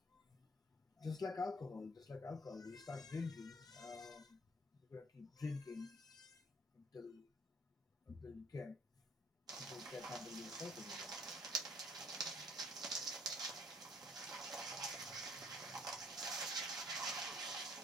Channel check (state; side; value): normal; both; correlation 0.59